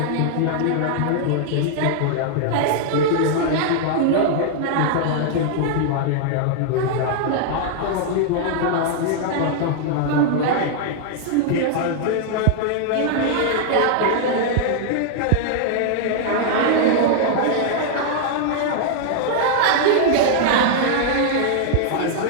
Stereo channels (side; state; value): both; different; correlation -0.01